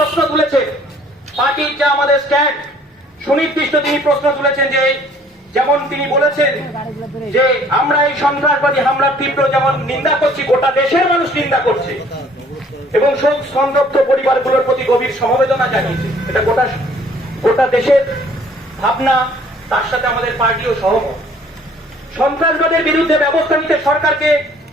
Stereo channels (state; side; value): normal; both; correlation 0.57